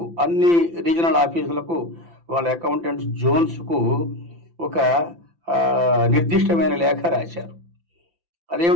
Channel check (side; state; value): left; late; 5.9 ms